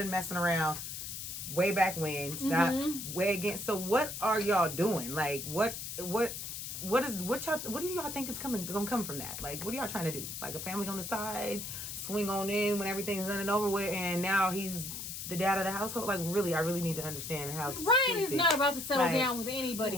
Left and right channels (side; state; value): left; noise; hiss, 7 dB below the sound